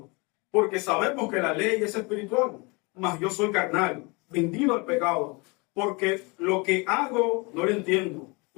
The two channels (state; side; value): quieter; right; 28.3 dB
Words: Porque sabemos que la ley es espiritual, mas yo soy carnal, vendido al pecado. Porque lo que hago no lo entiendo,